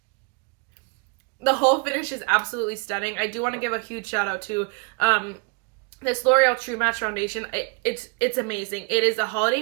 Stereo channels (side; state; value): left; quieter; 32.6 dB